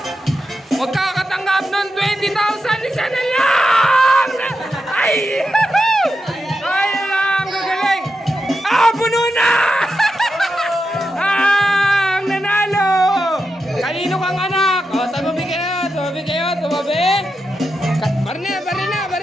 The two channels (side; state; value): both; normal; correlation 0.88